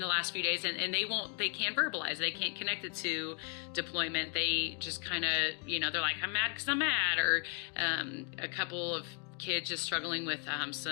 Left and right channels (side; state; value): right; quieter; 39.9 dB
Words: the last few days, and they can't verbalize, they can't connect it to deployment. They just kind of, they're like, I'm mad because I'm mad, or a couple of kids just struggling with